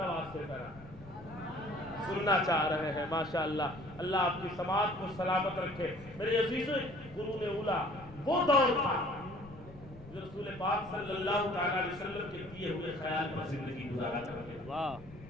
سے ذرا سننا چاہ رہے ہیں. ماشاءاللہ, اللہ آپ کی سماعت کو سلامت رکھے. میرے عزیزوں, قرون اولیٰ وہ دور تھا رسول پاک صلی اللہ تعالیٰ علیہ وسلم کے دیے ہوئے خیال پر زندگی گزارا کرتے ہیں. واہ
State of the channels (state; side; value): noise; left; rumble, 18 dB below the sound